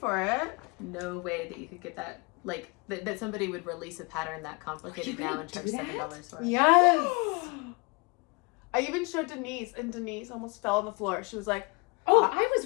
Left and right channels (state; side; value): quieter; right; 29.1 dB